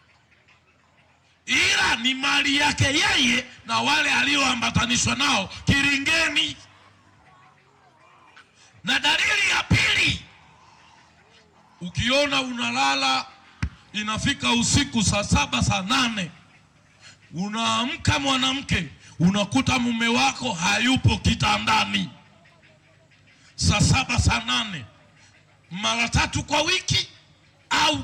ni mali yake yeye na wale alioambatanishwa nao kiringeni. Na dalili ya pili, ukiona unalala inafika usiku saa 7 saa 8, unaamka mwanamke, unakuta mume wako hayupo kitandani saa 7 saa 8, mara 3 kwa wiki au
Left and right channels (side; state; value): both; identical; correlation 1.00